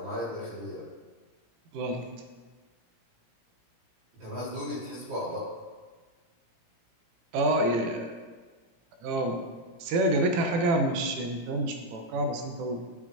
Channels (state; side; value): late; left; 18 ms